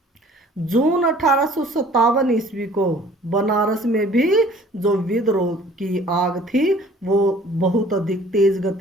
जून 1857 ईस्वी को बनारस में भी जो विद्रोह की आग थी वो बहुत अधिक तेज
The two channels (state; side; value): normal; both; correlation 0.52